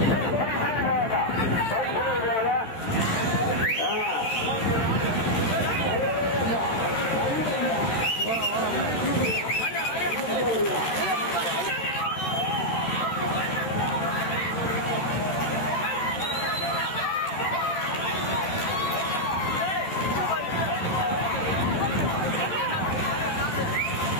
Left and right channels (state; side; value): late; right; 13 ms